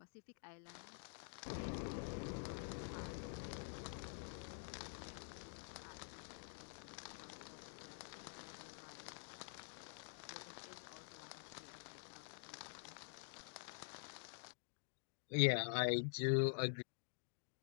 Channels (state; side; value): silent; right; digital silence